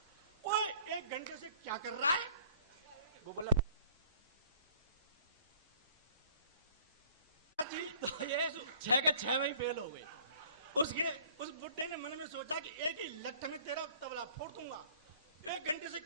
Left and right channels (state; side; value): inverted; both; correlation -0.55